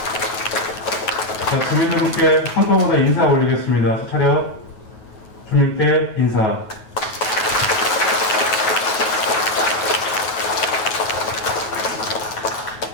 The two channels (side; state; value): right; late; 9.3 ms